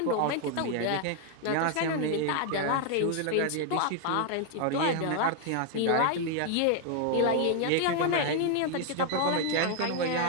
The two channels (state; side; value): different; both; correlation 0.00